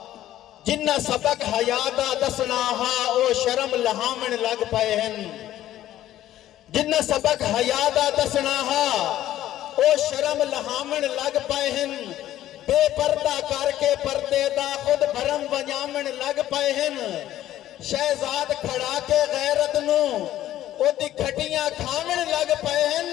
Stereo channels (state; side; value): quieter; right; 13.2 dB